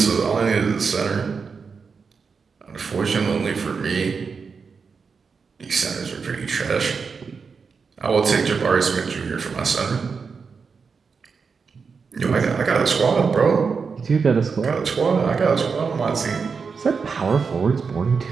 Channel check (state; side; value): quieter; left; 5.4 dB